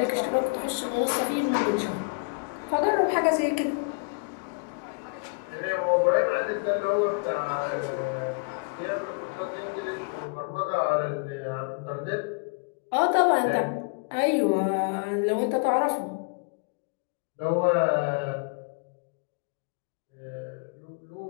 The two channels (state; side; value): quieter; right; 34.5 dB